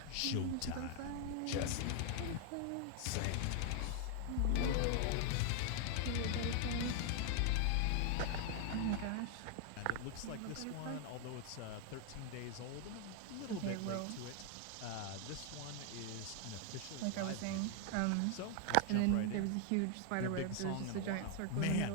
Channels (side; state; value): both; different; correlation 0.00